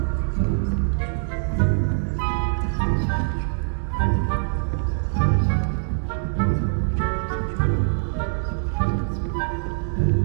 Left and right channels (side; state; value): left; silent; digital silence